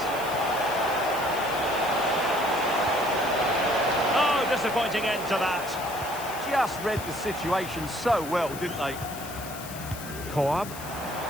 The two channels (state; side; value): noise; left; hiss, 13 dB below the sound